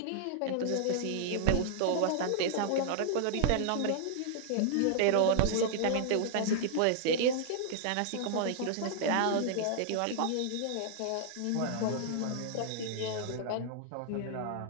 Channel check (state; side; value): different; both; correlation -0.01